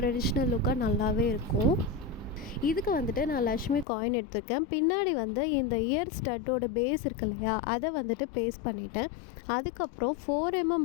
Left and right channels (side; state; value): right; drops out; at 3.9 s